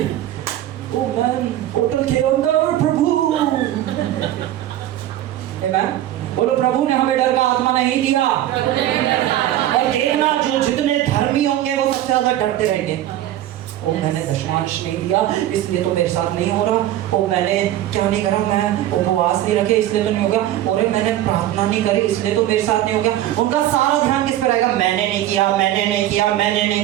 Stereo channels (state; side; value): quieter; left; 13.2 dB